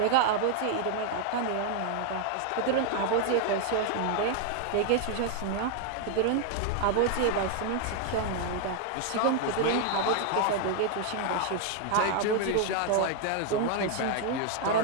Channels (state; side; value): different; both; correlation 0.00